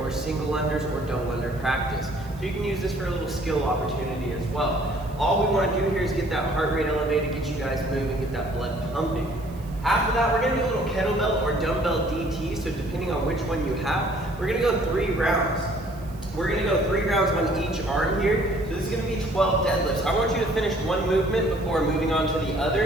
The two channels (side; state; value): right; noise; hiss, 26 dB below the sound